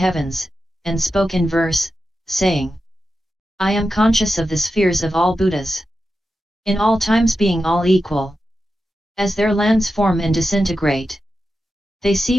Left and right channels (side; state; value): both; normal; correlation 0.90